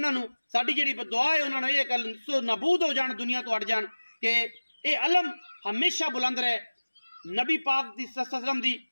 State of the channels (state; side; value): inverted; both; correlation -1.00